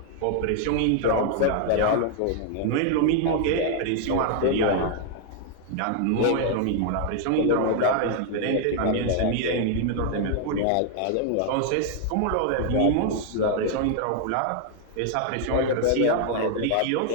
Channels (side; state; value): both; different; correlation 0.00